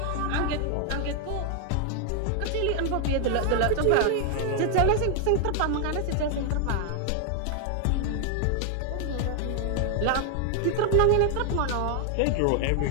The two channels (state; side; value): different; both; correlation 0.00